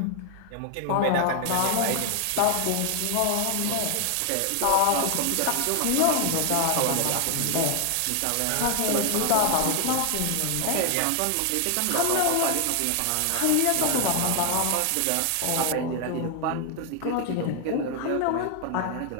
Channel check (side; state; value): both; different; correlation 0.00